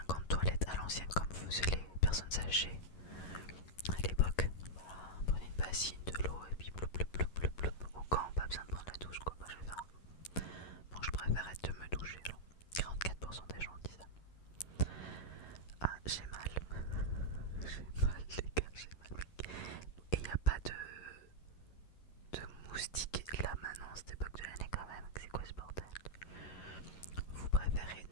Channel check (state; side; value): late; right; 11 ms